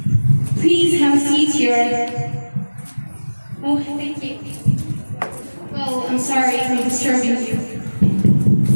Please have a seat here. Oh, thank you. Well, I'm sorry if I'm disturbing you.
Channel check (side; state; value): both; inverted; correlation -1.00